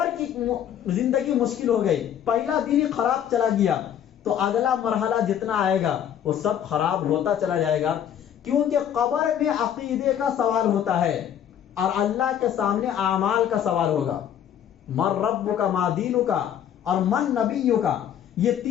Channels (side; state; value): right; quieter; 9.7 dB